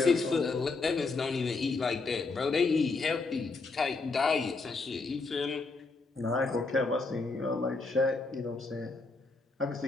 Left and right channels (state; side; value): quieter; right; 3.8 dB